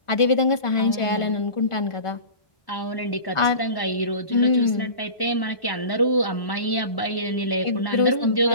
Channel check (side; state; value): right; late; 1.1 ms